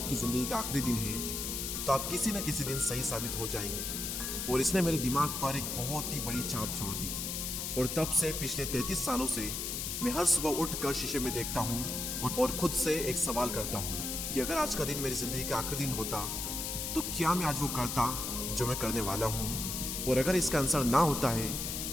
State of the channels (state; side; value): noise; left; hiss, 3 dB below the sound